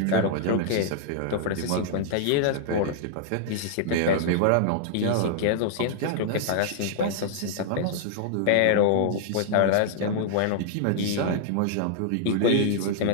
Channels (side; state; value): both; different; correlation -0.01